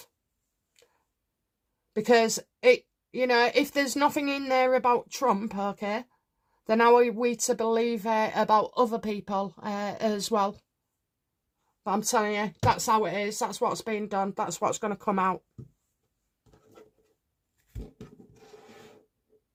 Because, you know, if there's nothing in there about Trump, okay, then how are we to believe about other people as well? But I'm telling you, that's how it is. That's what's being done. That's what's going to come out.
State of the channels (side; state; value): both; identical; correlation 1.00